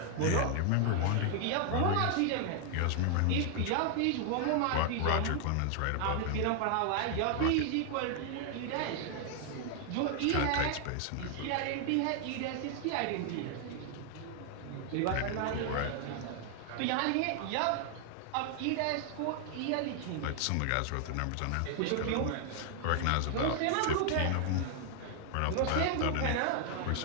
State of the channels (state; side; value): different; both; correlation 0.00